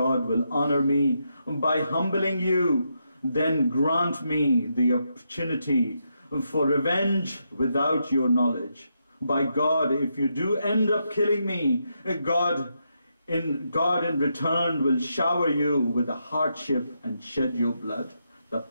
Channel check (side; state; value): both; inverted; correlation -0.82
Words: will honor me by humbling you, then grant me the opportunity for revenge without your knowledge. By God, if you do end up killing me, God in return will shower you with a hardship and shed your blood. The